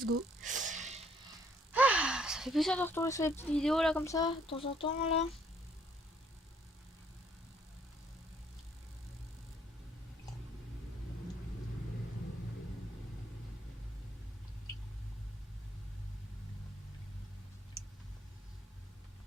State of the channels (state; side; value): normal; both; correlation 0.65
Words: go. Ah, ça fait plaisir de retourner sur les petites vidéos là comme ça, de temps en temps là.